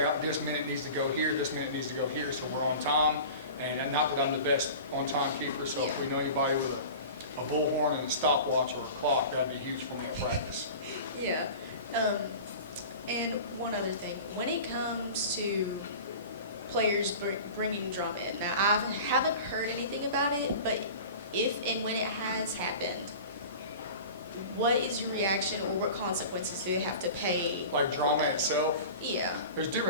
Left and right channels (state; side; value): inverted; both; correlation -0.37